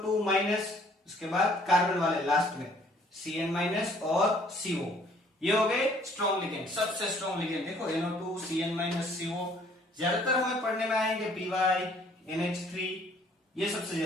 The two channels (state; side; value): normal; both; correlation 0.59